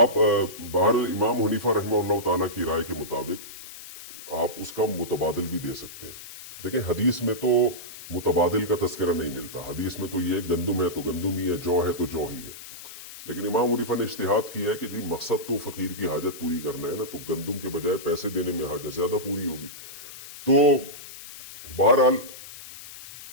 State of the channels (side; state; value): left; noise; hiss, 14 dB below the sound